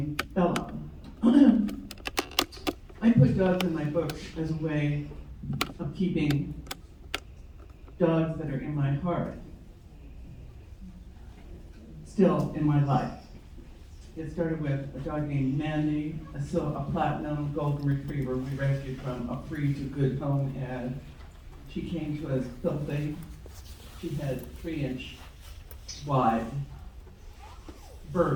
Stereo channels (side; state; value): both; identical; correlation 1.00